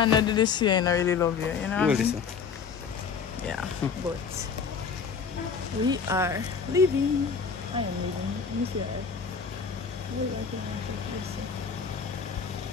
not do this here, I really love you, you know what I mean? Yeah, but we are leaving. I am leaving. Let me see that.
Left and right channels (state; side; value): quieter; right; 6.1 dB